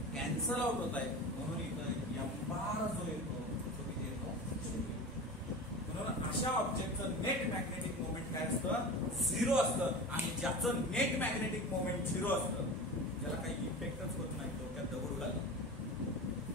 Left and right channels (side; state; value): both; normal; correlation 0.31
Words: कॅन्सल आउट होत आहेत. म्हणून इथं एम्बार जो येतो तो किती येतो, 0. म्हणून अशा ऑब्जेक्टचं नेट मॅग्नेटिक मोमेंट काय असतं, 0 असतं. आणि ज्याचं नेट मॅग्नेटिक मोमेंट 0 असतं, ज्याला काही इफेक्टच होत नाही, डोक्यात दगड घालतो,